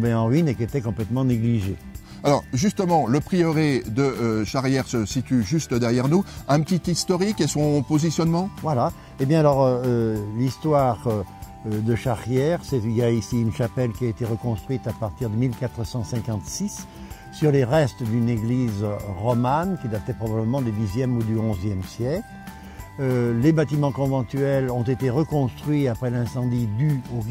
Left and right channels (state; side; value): identical; both; correlation 1.00